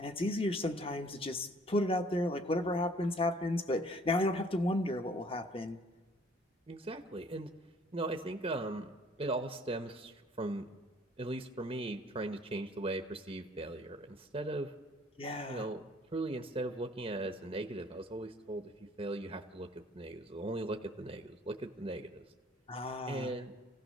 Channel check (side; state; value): both; normal; correlation 0.57